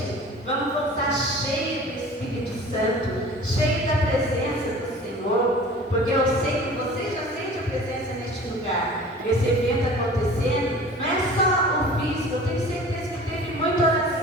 Vamos voltar cheio do Espírito Santo, cheio da presença do Senhor, porque eu sei que você já sente a presença neste lugar. Esse evento acontecendo, não é só o físico, eu tenho certeza que teve muita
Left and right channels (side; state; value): both; normal; correlation 0.43